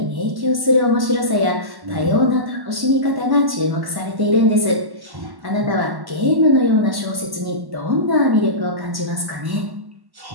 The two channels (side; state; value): left; late; 1.1 ms